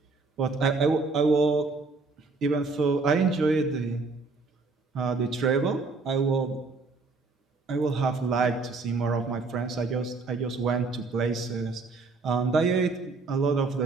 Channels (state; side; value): quieter; left; 3.9 dB